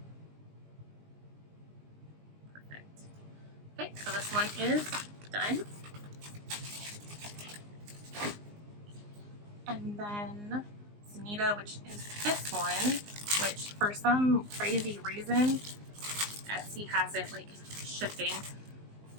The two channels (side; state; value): left; late; 19 ms